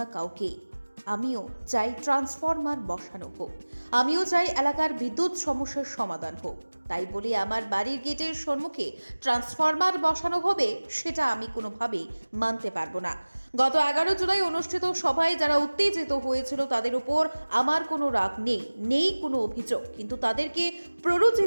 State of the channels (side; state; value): both; inverted; correlation -1.00